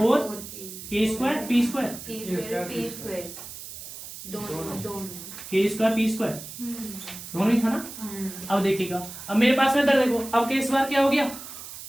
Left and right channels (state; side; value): noise; right; hiss, 12 dB below the sound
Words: k square p square, k square p square, दोनों ही था ना। अब देखिएगा, अब मेरे पास में इधर देखो, अब के स्क्वायर क्या हो गया,